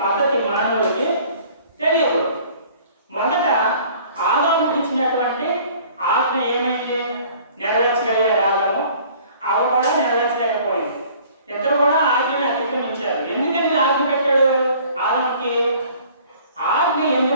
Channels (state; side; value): inverted; both; correlation -0.52